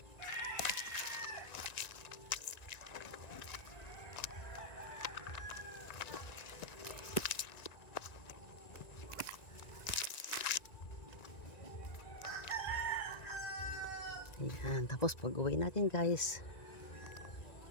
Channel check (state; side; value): late; right; 1.9 ms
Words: Ayan, tapos pag-uwi natin guys,